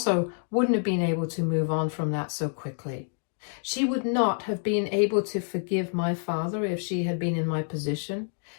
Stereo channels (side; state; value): right; silent; 55 dB below the other